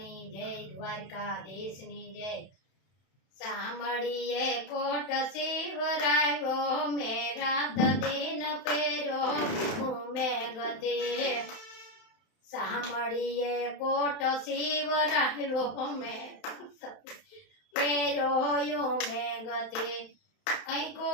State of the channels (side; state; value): right; late; 31 ms